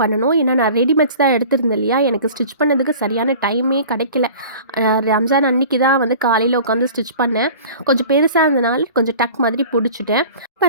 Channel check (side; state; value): both; inverted; correlation -0.42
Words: பண்ணணும். ஏன்னா நான் ரெடிமேட்ஸ் தான் எடுத்திருந்தேன் இல்லையா, எனக்கு ஸ்டிச் பண்ணதுக்கு சரியான டைமே கிடைக்கல. ரம்ஜான் அன்னைக்கு தான் வந்து காலையில் உட்காந்து ஸ்டிச் பண்ணேன். கொஞ்சம் பெருசாக இருந்தனால கொஞ்சம் டக் மாதிரி பிடிச்சிட்டேன்.